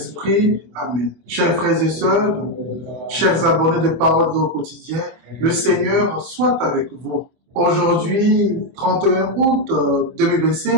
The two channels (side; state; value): left; late; 24 ms